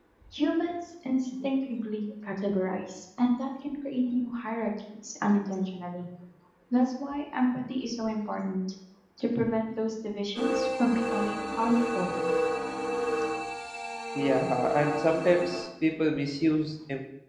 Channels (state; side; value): identical; both; correlation 1.00